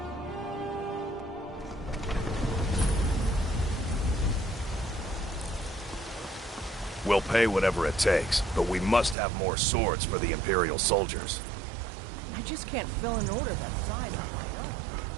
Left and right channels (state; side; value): drops out; left; at 9.2 s